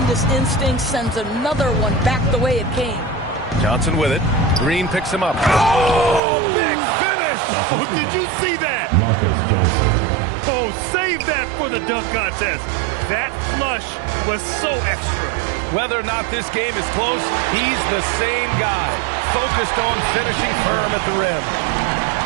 instincts, sends another one back the way it came. Johnson with it. Green picks him up. Oh, big finish! Oh, did you see that? Marcus Johnson. Oh, save that for the dunk contest. That flush was so extra. Whether or not this game is close, he's the same guy. Focused on finishing firm at the rim.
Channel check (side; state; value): left; drops out; at 6.2 s